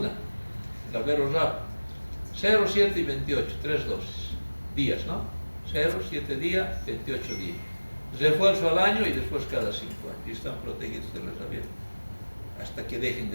la Verorab, 0, 7 y 28, 3 dosis, días, ¿no? 0, 7 días, 28 días. Refuerzo al año y después cada 5 años. Y están protegidos de la rabia hasta que dejen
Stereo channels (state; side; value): inverted; both; correlation -1.00